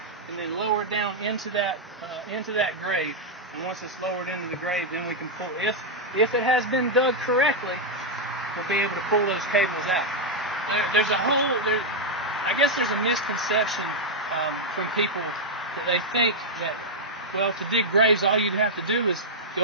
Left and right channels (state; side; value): normal; both; correlation -0.03